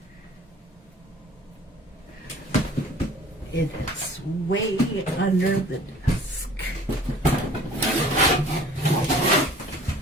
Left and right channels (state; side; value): normal; both; correlation 0.49